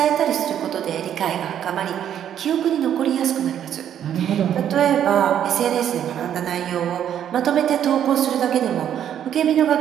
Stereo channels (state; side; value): quieter; left; 9.9 dB